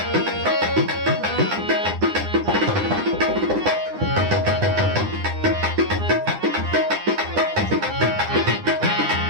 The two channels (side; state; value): left; late; 9.9 ms